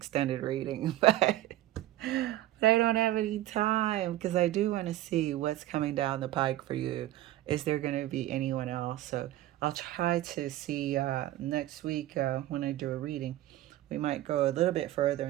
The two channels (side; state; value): left; quieter; 14.8 dB